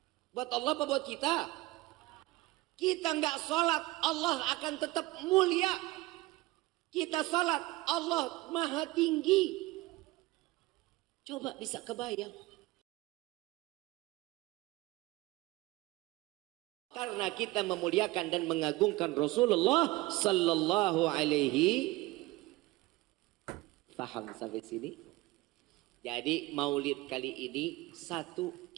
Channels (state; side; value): quieter; left; 20.2 dB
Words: Buat Allah apa buat kita? Kita nggak salat, Allah akan tetap mulia. Kita salat, Allah maha tinggi. Coba bisa kebayang. Karena kita memuliakan dan mengagungkan Rasulullah sallallahu alaihi. Paham sampai sini? Jadi maulid kali ini satu,